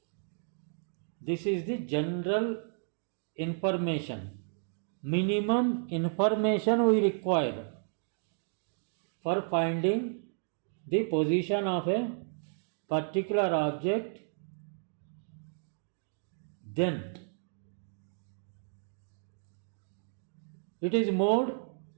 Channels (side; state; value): left; silent; digital silence